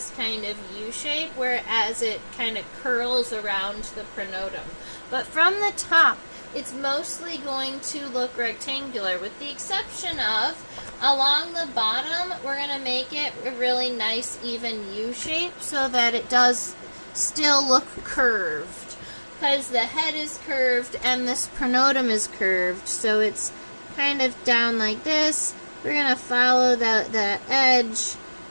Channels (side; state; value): both; inverted; correlation -1.00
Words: kind of U shape, whereas it kind of curls around the pronotum. But from the top, it's mostly going to look rectangular, with the exception of along the bottom, we're going to make it a really nice even U shape so that it does still look curved, because the head is curved and this pronotum is curved, so it's kind of down like this. We're going to follow that edge,